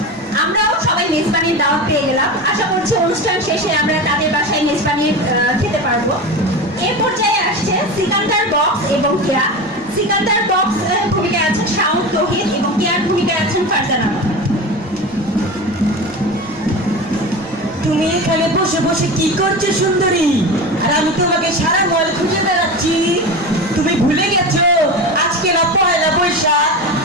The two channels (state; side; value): normal; both; correlation 0.26